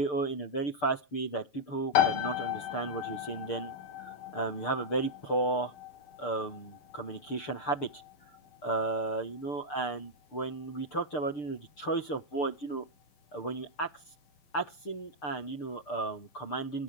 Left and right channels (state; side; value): late; right; 6.7 ms